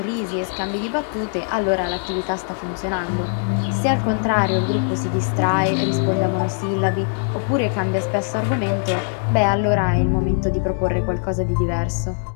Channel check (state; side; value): silent; right; 59 dB below the other